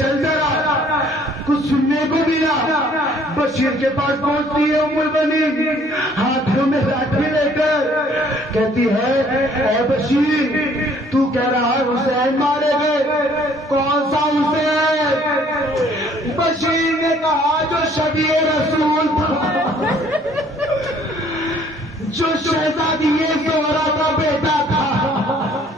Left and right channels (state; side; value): normal; both; correlation 0.59